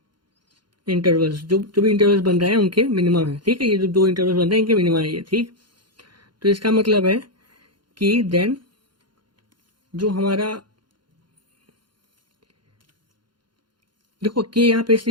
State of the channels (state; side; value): late; left; 0.72 ms